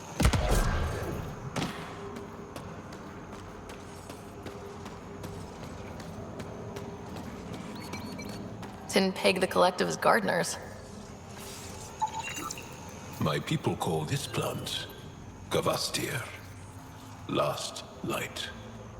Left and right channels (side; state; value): both; identical; correlation 1.00